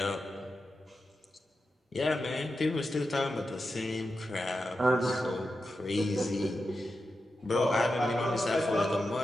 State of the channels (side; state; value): both; normal; correlation 0.89